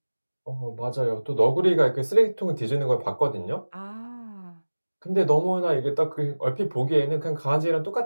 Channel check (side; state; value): both; inverted; correlation -1.00